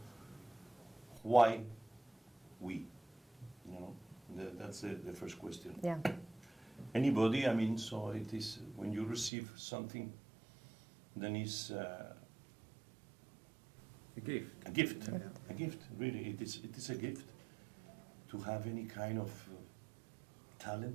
why we? That's the first question. Yeah. Anybody, so it is, when you receive something, then it's A gift. a gift. Yeah. A gift, really. It is a gift to have any kind of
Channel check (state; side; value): drops out; left; at 9.3 s